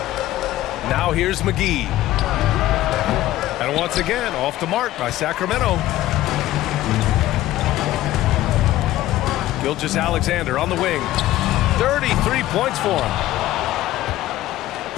Now here's McGee. And once again, off the mark by Sacramento. Gilgeous-Alexander on the wing. 33 points for him.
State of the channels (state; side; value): quieter; right; 15.1 dB